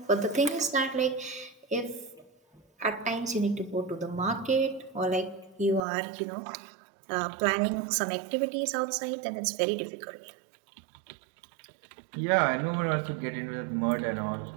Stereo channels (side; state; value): left; drops out; at 5.8 s